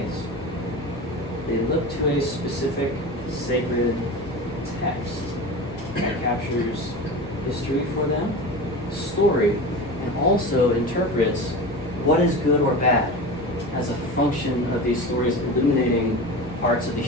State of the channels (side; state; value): both; normal; correlation 0.29